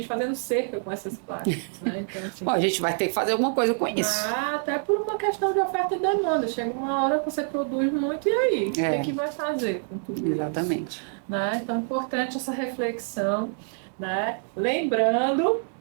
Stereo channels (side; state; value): left; silent; 56 dB below the other